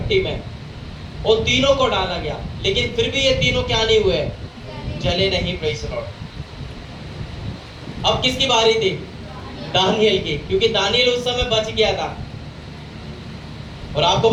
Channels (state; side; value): identical; both; correlation 1.00